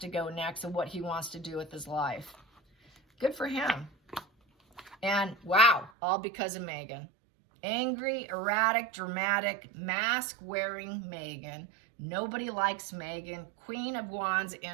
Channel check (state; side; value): drops out; left; at 5.9 s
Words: go next and what he wants to do with his life. Good for him. And wow, all because of Megan. Angry, erratic, dramatic, mask-wearing Megan. Nobody likes Megan. Queen of Wands